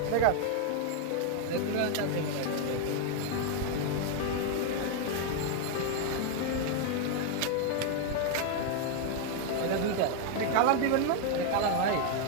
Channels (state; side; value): different; both; correlation 0.00